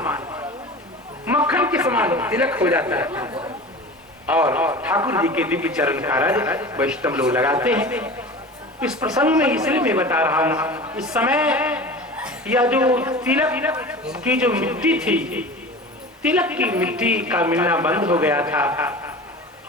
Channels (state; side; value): normal; both; correlation 0.35